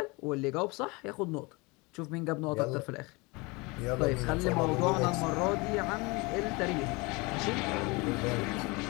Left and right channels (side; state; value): right; quieter; 26.0 dB